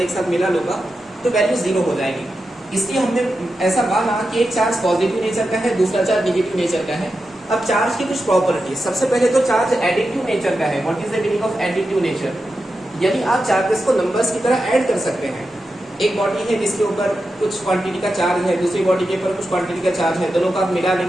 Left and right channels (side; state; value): both; normal; correlation 0.90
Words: एक साथ मिला लूंगा तो वैल्यू जीरो हो जाएगी। इसलिए हमने ऐसा माना कि एक चार्ज पॉजिटिव नेचर का है, दूसरा चार्ज नेगेटिव नेचर का है। अब चार्ज की कुछ प्रॉपर्टी, सबसे पहले तो चार्ज एडिटिव नेचर का है। What is the meaning of additive nature? यानी आप चार्जेस को नंबर्स की तरह ऐड कर सकते हैं। एक बॉडी है जिसके ऊपर कुछ क्वांटिटी का चार्ज है, दूसरी बॉडी के ऊपर कुछ क्वांटिटी का चार्ज है, दोनों को आप मिला